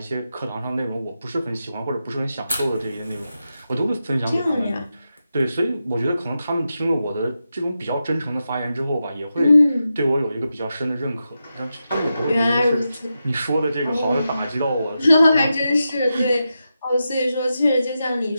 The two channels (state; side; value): inverted; both; correlation -0.89